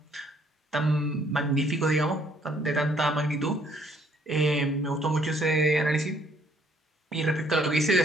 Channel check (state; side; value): normal; both; correlation 0.65